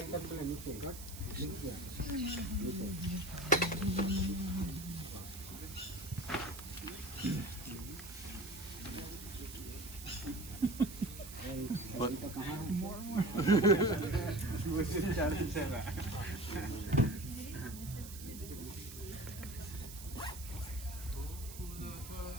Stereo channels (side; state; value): right; noise; hiss, 13 dB below the sound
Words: का पहले नीचे नीचे।